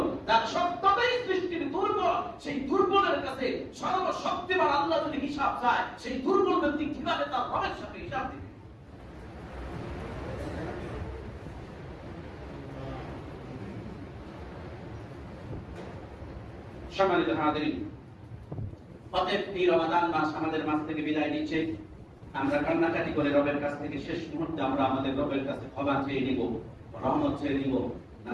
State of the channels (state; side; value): identical; both; correlation 1.00